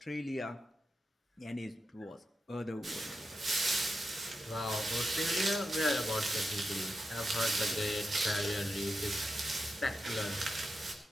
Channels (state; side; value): normal; both; correlation 0.89